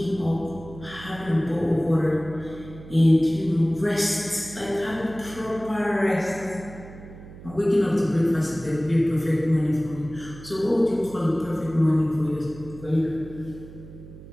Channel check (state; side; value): noise; right; hum, 17 dB below the sound